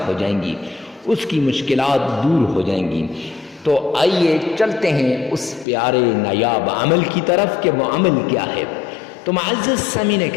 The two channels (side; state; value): right; drops out; at 5.7 s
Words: ہو جائیں گی، اس کی مشکلات دور ہو جائیں گی۔ تو آئیے چلتے ہیں اس پیارے نایاب عمل کی طرف کہ وہ عمل کیا ہے۔ تو معزز سامعین